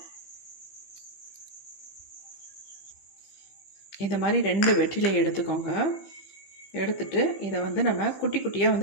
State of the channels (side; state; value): right; late; 15 ms